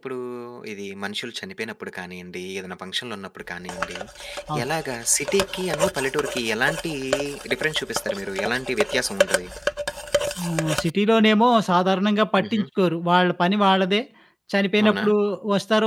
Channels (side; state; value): both; identical; correlation 1.00